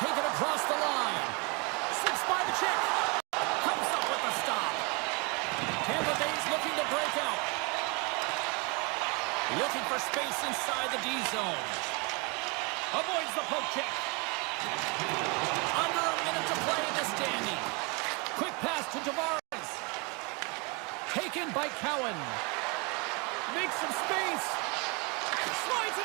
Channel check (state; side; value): quieter; left; 30.9 dB